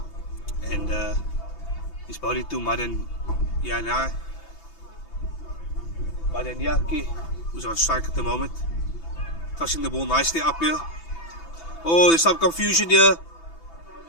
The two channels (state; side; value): late; right; 6.0 ms